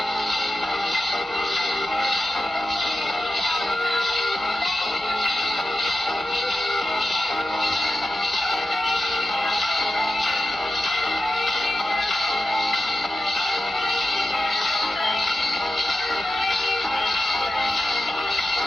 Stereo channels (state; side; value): normal; both; correlation 0.92